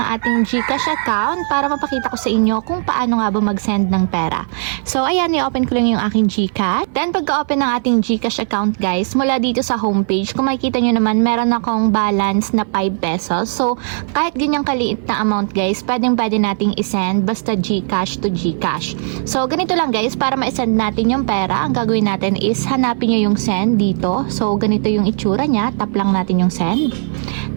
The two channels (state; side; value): silent; left; 57 dB below the other